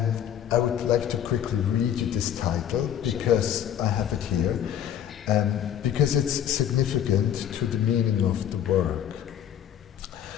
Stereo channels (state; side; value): quieter; right; 10.0 dB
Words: I would like to quickly read you this title, because I have it here. because it's significant to the meaning of the work.